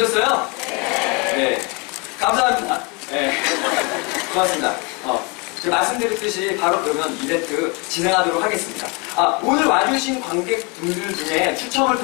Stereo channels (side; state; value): right; quieter; 30.4 dB